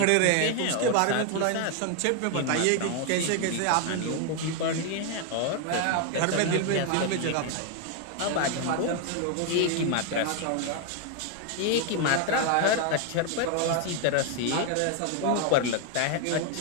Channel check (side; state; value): both; different; correlation 0.01